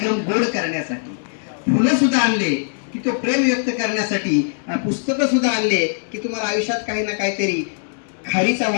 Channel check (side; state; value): right; silent; digital silence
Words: गोड करण्यासाठी, फुलं सुद्धा आणले की तो प्रेम व्यक्त करण्यासाठी, पुस्तकं सुद्धा आणले की तुम्हाला आयुष्यात काही ना काहीतरी खारीचा